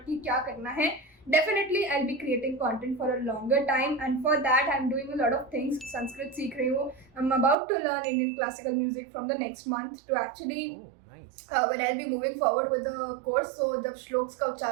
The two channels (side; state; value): left; drops out; at 7.6 s